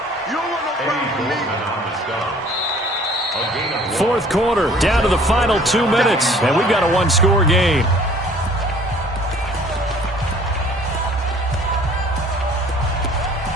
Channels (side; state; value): both; normal; correlation 0.53